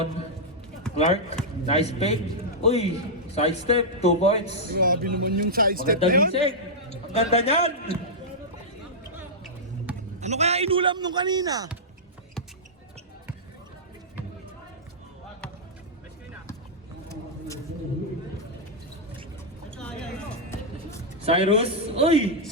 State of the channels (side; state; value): both; normal; correlation -0.09